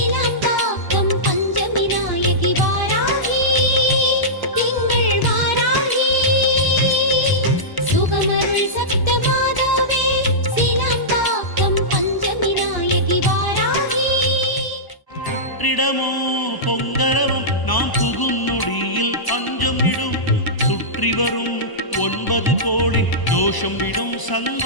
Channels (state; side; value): late; right; 1.0 ms